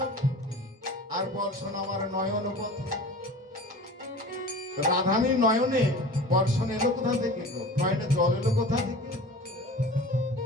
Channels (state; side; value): normal; both; correlation 0.38